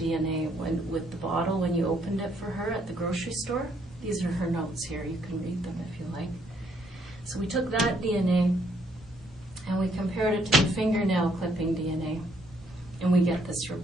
with the bottle when you opened it for her at the grocery store. These are her notes here. You can read them if you like. So we took that DNA and we compared it to the fingernail clipping DNA. And we get this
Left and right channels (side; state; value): both; normal; correlation 0.70